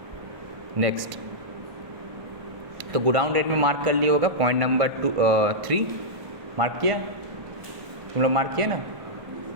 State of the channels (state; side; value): late; left; 1.5 ms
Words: नेक्स्ट तो गोडाउन रेंट में मार्क कर लिया होगा, पॉइंट नंबर 3 मार्क किया, तुम लोग मार्क किया ना,